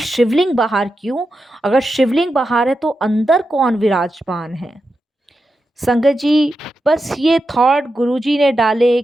बाहर क्यों? अगर शिवलिंग बाहर है तो अंदर कौन विराजमान है? संगत जी बस ये थॉट गुरुजी ने डाले,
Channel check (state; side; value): normal; both; correlation 0.89